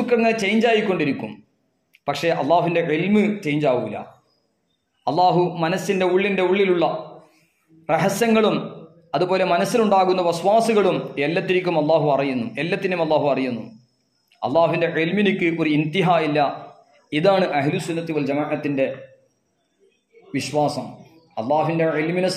ഇങ്ങനെ ചേഞ്ച് ആയിക്കൊണ്ടിരിക്കും. പക്ഷേ അള്ളാഹുവിൻ്റെ ഇൽമ് ചേഞ്ച് ആവൂല. അള്ളാഹു മനസ്സിൻ്റെ ഉള്ളിലുള്ള രഹസ്യങ്ങളും അതുപോലെ മനസ്സിലുണ്ടാകുന്ന വസ്വാസുകളും എല്ലാത്തിനും അള്ളാഹു അറിയുന്നു. അള്ളാഹുവിൻ്റെ ഇൽമിനിക്ക് ഒരു ഇന്തിഹ ഇല്ല. ഇതാണ് അഹ്ലുസുന്നത്തി വൽ ജമാഅത്തിൻ്റെ വിശ്വാസം. അള്ളാഹുവിൻ്റെ ഇൽമിനെ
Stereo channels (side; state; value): both; identical; correlation 1.00